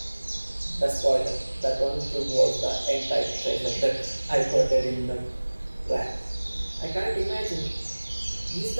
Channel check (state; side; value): inverted; both; correlation -1.00